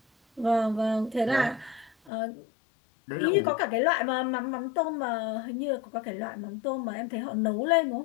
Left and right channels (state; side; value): drops out; right; at 2.1 s